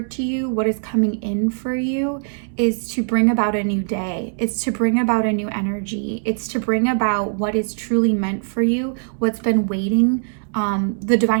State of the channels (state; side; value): silent; left; 65 dB below the other